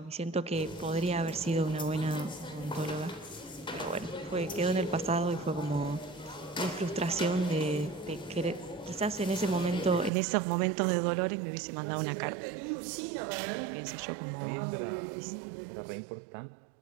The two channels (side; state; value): left; drops out; at 10.1 s